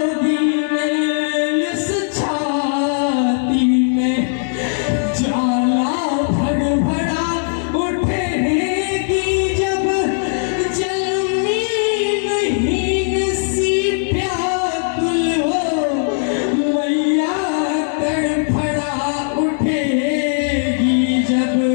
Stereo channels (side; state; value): right; silent; digital silence